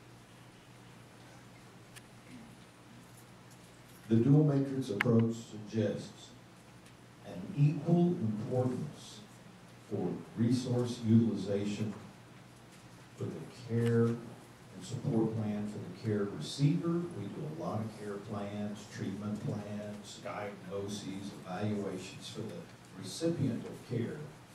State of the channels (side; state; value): both; identical; correlation 1.00